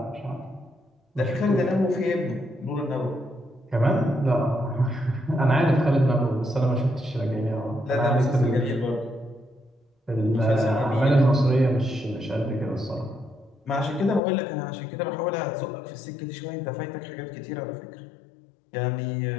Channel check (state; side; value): drops out; right; at 14.2 s